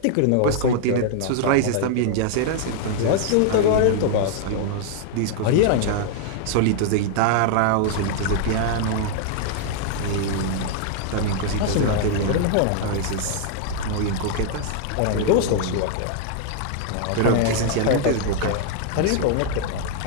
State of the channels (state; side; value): different; both; correlation 0.00